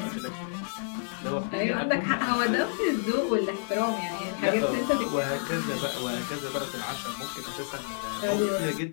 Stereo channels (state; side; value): silent; right; 58 dB below the other